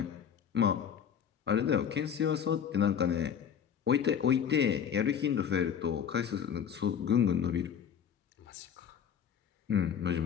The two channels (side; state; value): right; quieter; 8.1 dB